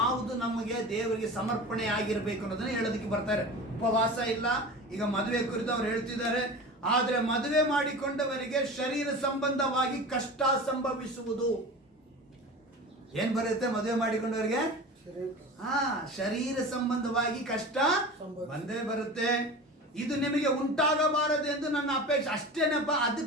ನಮಗೆ ದೇವರಿಗೆ ಸಮರ್ಪಣೆ ಆಗಿರಬೇಕು ಅನ್ನೋದನ್ನ ಹೇಳೋದಕ್ಕೆ ಬರ್ತಾರೆ. ಉಪವಾಸ ಇಲ್ಲ, ಈಗ ಮದುವೆ ಕುರಿತು ಅವ್ರು ಹೇಳ್ತಿದ್ದಾರೆ. ಆದ್ರೆ ಮದುವೆ ಮಾಡಿಕೊಂಡವರಿಗೆ ಶರೀರ ಸಂಬಂಧವಾಗಿ ಕಷ್ಟ ಸಂಭವಿಸುವುದು. ಏನ್ ಬರುತ್ತೆ ಮದುವೆ ಮಾಡಿಕೊಂಡವರಿಗೆ? ಶರೀರ ಸಂಬಂಧವಾಗಿ ಕಷ್ಟ ಬಂದೇ ಬರುತ್ತೆ. ಇದು ನಿಮಗೆ ಉಂಟಾಗಬಾರದು ಎಂದು ನನ್ನ ಅಪೇಕ್ಷೆ. ಅಷ್ಟೇನಪ್ಪ,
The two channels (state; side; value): normal; both; correlation 0.33